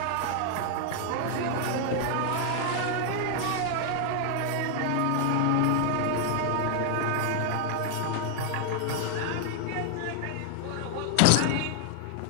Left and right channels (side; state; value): both; different; correlation 0.00